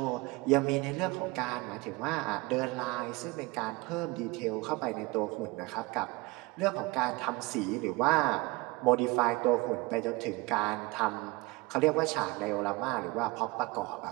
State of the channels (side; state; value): left; quieter; 24.1 dB